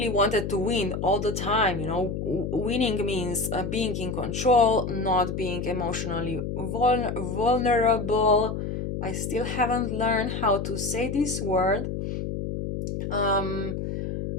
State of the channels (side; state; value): left; noise; hum, 4 dB below the sound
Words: wanted to win all the time. You know, winning means being in control, not being emotionally vulnerable. I still haven't learned how to say this word.